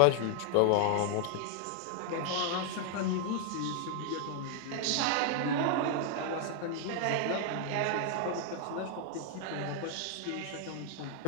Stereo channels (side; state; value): both; different; correlation 0.00